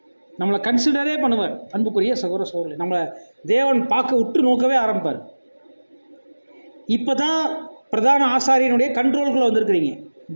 நம்மளை கன்சிடரே பண்ணுவார். அன்புக்குரிய சகோதர சகோதரி, நம்மளை தேவன் பார்க்க உற்று நோக்கவே ஆரம்பிப்பார். இப்போ தான் பிரதான ஆசாரியனுடைய கண்ட்ரோலுக்குள்ளே வந்திருக்கிறீங்க.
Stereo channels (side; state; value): both; inverted; correlation -1.00